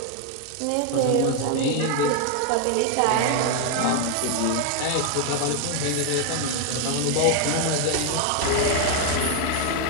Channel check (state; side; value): different; both; correlation 0.01